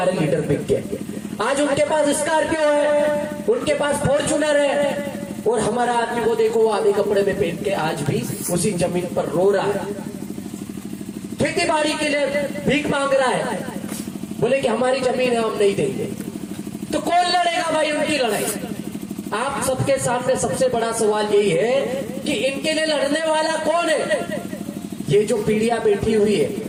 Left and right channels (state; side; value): identical; both; correlation 1.00